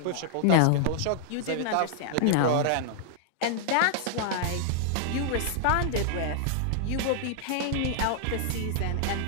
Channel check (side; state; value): both; different; correlation -0.01